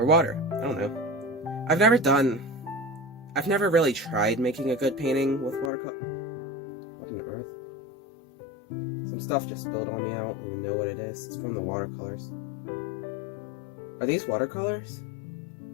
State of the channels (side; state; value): right; drops out; at 5.7 s